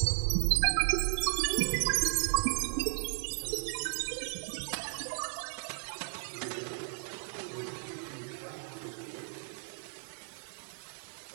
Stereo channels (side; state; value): left; silent; 55 dB below the other